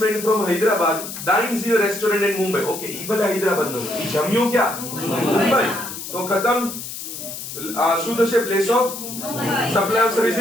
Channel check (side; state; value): left; noise; hiss, 9 dB below the sound